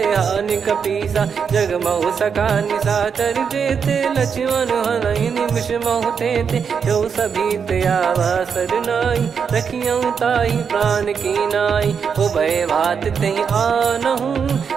हानि कपीसा। जग महु सका निशाचर जेते, लक्ष्मण हनहि निमिष महु तेते। जो सभी त्यावा सरनाई, रखियऊ ताहि प्राण की नाई। ओ भय भात तहि आनहु,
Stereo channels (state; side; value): quieter; left; 6.5 dB